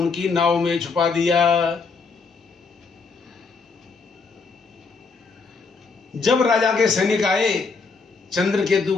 नाव में छुपा दिया। जब राजा के सैनिक आए चंद्रकेतु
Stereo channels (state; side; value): quieter; right; 4.7 dB